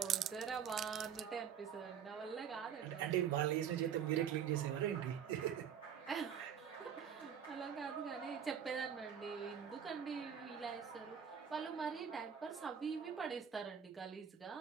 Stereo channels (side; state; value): left; quieter; 8.2 dB